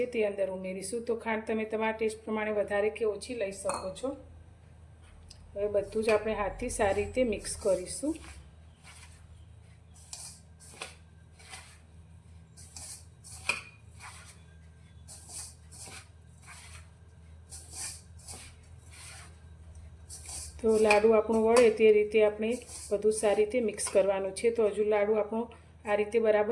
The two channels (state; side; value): identical; both; correlation 1.00